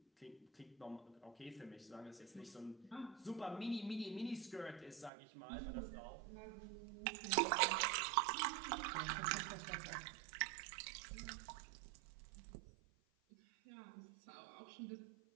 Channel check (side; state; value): left; drops out; at 5.1 s